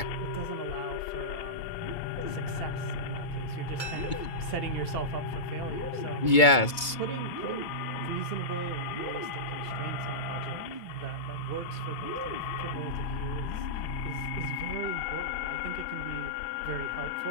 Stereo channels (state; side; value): late; right; 2.2 ms